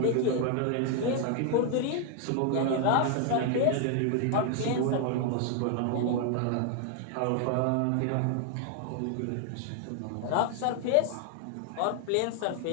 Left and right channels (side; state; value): both; different; correlation 0.00